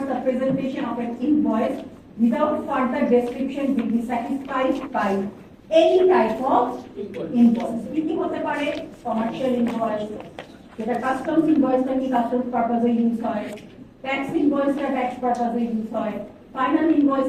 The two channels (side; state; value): both; identical; correlation 1.00